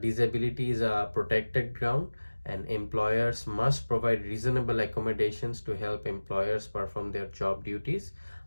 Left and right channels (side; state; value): both; inverted; correlation -1.00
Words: disability is a protected ground and employers must provide reasonable accommodations to help employers perform their job duties